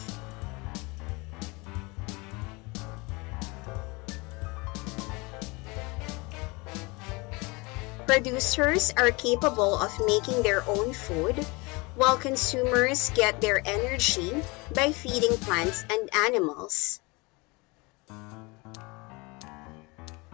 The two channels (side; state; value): right; quieter; 26.2 dB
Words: Producers are capable of making their own food, while consumers get their energy by feeding plants and animals.